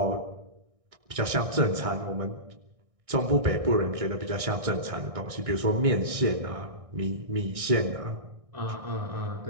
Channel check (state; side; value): late; left; 1.6 ms